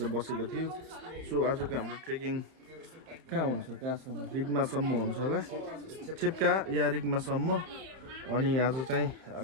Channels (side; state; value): left; late; 31 ms